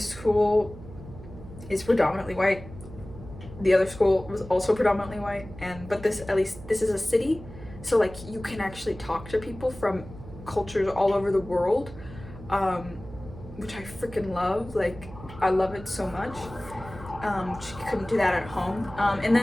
school is predominantly white, the other school was also predominantly white, but this is a city, so like you can actually talk to people from cultures all over the world, which I freaking love. Like I love it so much. You couldn't do that at home. And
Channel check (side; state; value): right; noise; hum, 15 dB below the sound